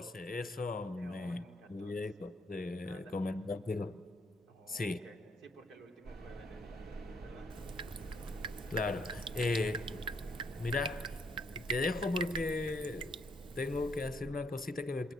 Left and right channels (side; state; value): both; normal; correlation 0.72